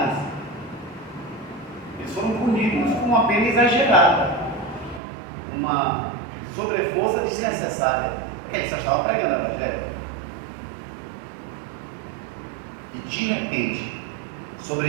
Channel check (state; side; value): drops out; left; at 5.0 s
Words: Eles foram punidos com uma pena exagerada, uma sobreforça desnecessária, porque eles só estavam pregando o Evangelho. E de repente,